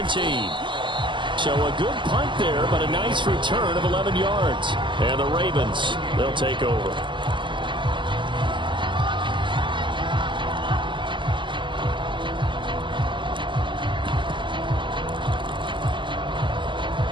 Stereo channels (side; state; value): left; late; 0.23 ms